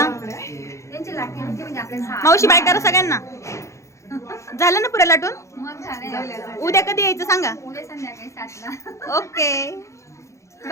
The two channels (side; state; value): right; late; 0.14 ms